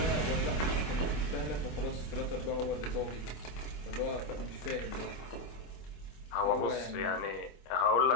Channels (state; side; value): late; right; 25 ms